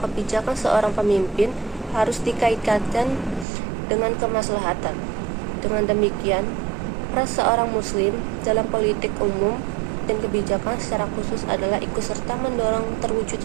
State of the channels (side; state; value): left; drops out; at 3.5 s